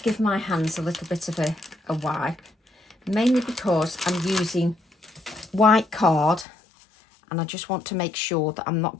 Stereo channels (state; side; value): drops out; right; at 6.5 s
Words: give my hands a little bit of a wipe, mainly because I'm using white card and I just want to make sure that I'm not